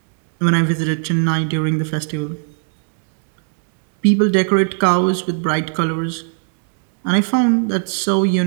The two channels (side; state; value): left; silent; 62 dB below the other